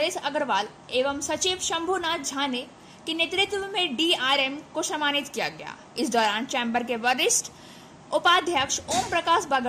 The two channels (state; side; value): identical; both; correlation 1.00